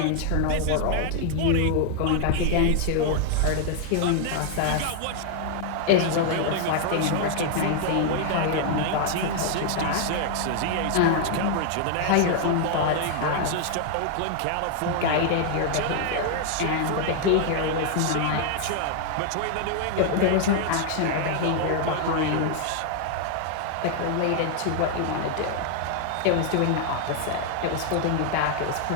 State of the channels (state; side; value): different; both; correlation 0.00